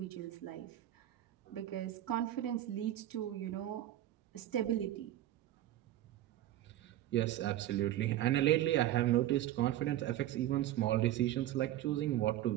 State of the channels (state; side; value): quieter; left; 13.6 dB